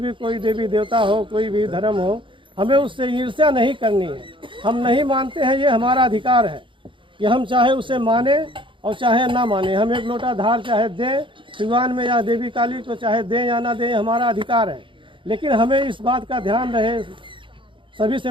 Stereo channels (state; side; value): late; left; 0.24 ms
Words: कोई देवी देवता हो, कोई भी धर्म हो, हमें उससे ईर्ष्या नहीं करनी है। हम नहीं मानते हैं, ये हमारा अधिकार है कि हम चाहे उसे माने और चाहे ना माने। हम एक लोटा धार चाहे दें सिवान में या देवी काली को, चाहे दें या ना दें, हमारा अधिकार है। लेकिन हमें इस बात का ध्यान रहे, सभी से